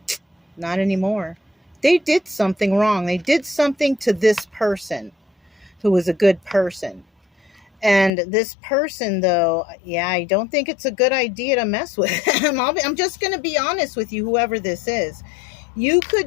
Not anymore. They did something wrong. They did something to this person who was a good person. And this person, though, yeah, I don't think it's a good idea to mess with him. I'm just going to be honest with you, whoever this is. You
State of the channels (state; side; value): drops out; right; at 8.1 s